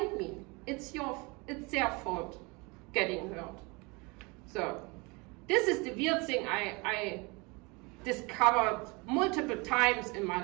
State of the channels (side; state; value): left; quieter; 27.8 dB